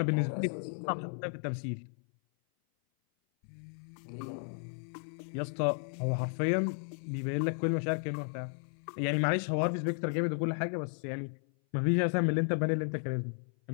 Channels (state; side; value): silent; right; 55 dB below the other